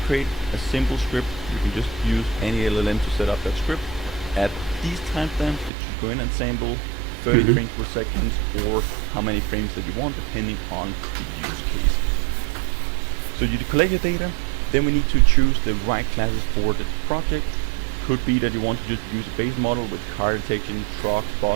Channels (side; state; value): left; drops out; at 5.7 s